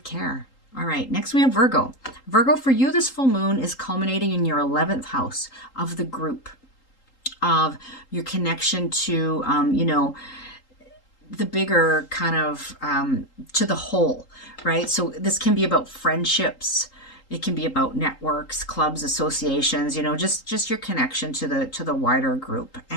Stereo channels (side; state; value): right; late; 3.8 ms